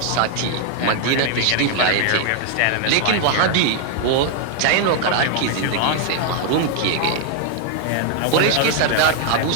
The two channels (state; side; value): different; both; correlation 0.00